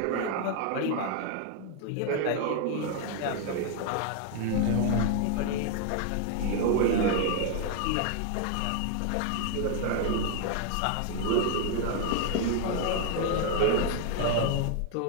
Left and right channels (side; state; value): both; different; correlation 0.00